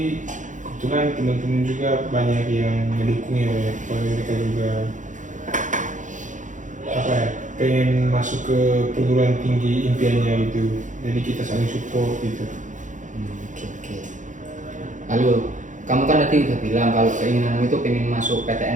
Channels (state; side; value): late; left; 0.36 ms